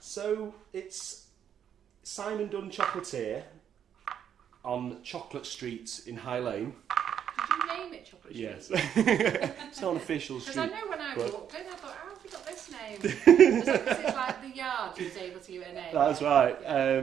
it's Simon Dunn Chocolatier on Chocolate Street in High Lane. Did you name it Chocolate Street? Yes. It's not an official Because street. I know when I but- walked in, I thought, how have you got this name? Is that because it's like the yard you was able to give it a name? That's right.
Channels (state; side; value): quieter; left; 9.0 dB